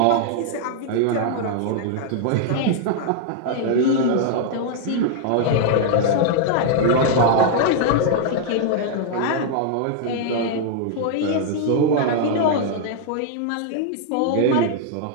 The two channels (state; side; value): different; both; correlation -0.01